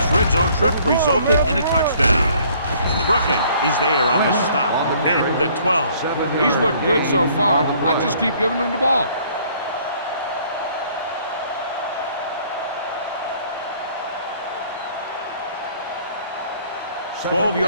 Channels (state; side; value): inverted; both; correlation -0.59